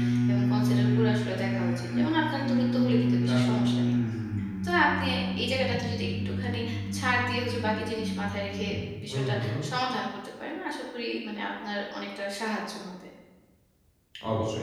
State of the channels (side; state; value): both; identical; correlation 1.00